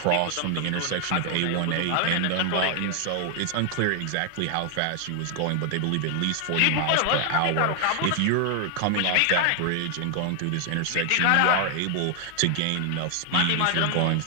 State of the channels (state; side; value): different; both; correlation 0.00